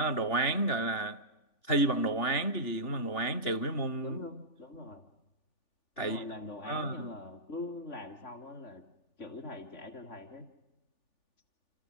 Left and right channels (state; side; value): late; right; 3.4 ms